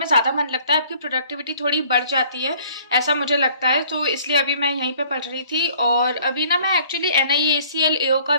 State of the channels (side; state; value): both; inverted; correlation -0.56